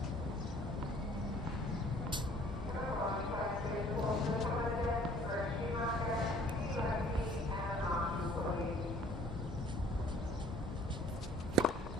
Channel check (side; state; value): both; normal; correlation 0.55